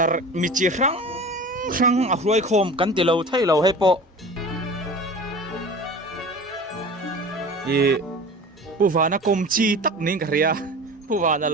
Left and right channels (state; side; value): normal; both; correlation 0.37